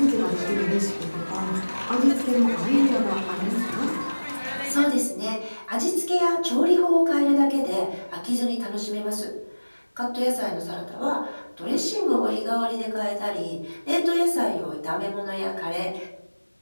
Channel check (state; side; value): inverted; both; correlation -1.00